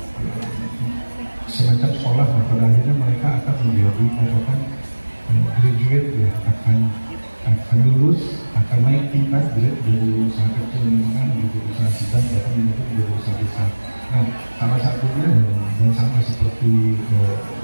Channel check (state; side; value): inverted; both; correlation -1.00